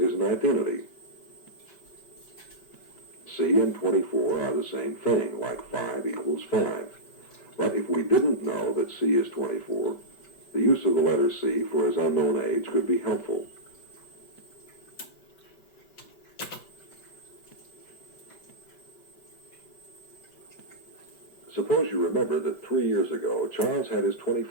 an identity. C and 24 are the same thing, like 5 equals 5. But if we didn't know that C is 24, the use of the letter C for his unknown age could be helpful. Suppose you remember that 3 years ago, Charles had his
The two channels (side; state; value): right; late; 5.2 ms